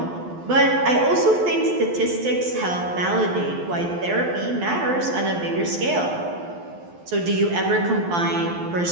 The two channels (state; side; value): late; left; 12 ms